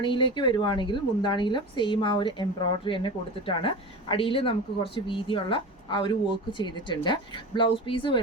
വരുവാണെങ്കിൽ മുന്താണിയിലും സെയിം ആ ഒരു എംബ്രോയിഡറി തന്നെ കൊടുത്തിട്ടാണ്. അടിയിൽ നമുക്ക് കുറച്ച് വീതിയുള്ള ആ ഒരു വർക്ക് ചെയ്തിട്ടുണ്ട്. ബ്ലൗസ് പീസ്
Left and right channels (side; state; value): both; normal; correlation 0.29